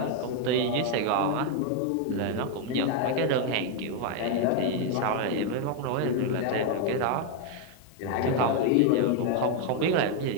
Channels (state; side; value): different; both; correlation 0.01